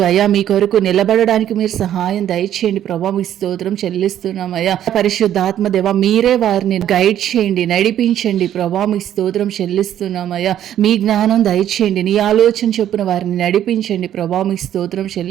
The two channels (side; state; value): left; quieter; 11.1 dB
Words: మీ కొరకు నిలబడడానికి మీరు సహాయం దయచేయండి ప్రభా మీ స్తోత్రం చెల్లిస్తున్నామయ్యా. పరిశుద్ధాత్మ దేవ మీరే వారిని గైడ్ చేయండి, నడిపించండి ప్రభా మీ స్తోత్రం చెల్లిస్తున్నామయ్యా. మీ జ్ఞానం దయచేయండి, నీ ఆలోచన చొప్పున వారిని నడిపించండి ప్రభా మీ స్తోత్రం